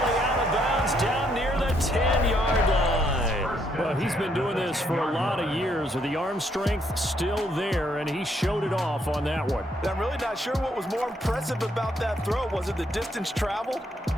out of bounds down near the 10-yard line. Well, he's been doing this for a lot of years with the arm strength still there, and he showed it off on that one. I'm really not sure what was more impressive about that throw. Was it the distance traveled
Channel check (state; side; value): normal; both; correlation 0.72